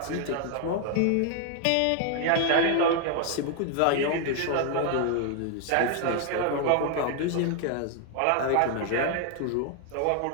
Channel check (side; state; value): both; different; correlation 0.00